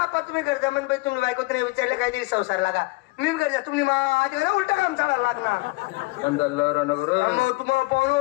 तुम्ही करता म्हण बाई तुम्ही बायको नाही विचारले काहीतरी संसार लागा मी करता तुम्ही माझ्या घरा उलटा काम चालायला लागणार तुम्हाला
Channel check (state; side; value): quieter; right; 23.6 dB